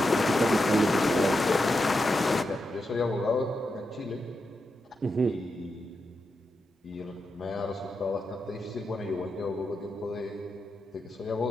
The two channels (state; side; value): normal; both; correlation 0.87